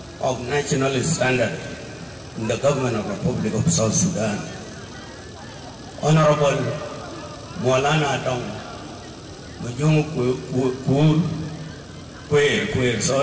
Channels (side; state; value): both; identical; correlation 1.00